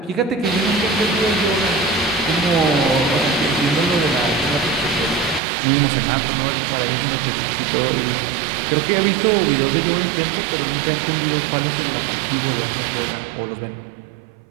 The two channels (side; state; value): left; drops out; at 5.4 s